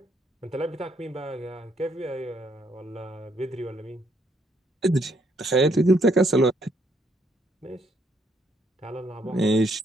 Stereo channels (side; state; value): both; normal; correlation 0.71